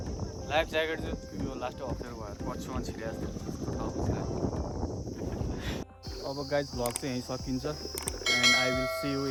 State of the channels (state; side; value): identical; both; correlation 1.00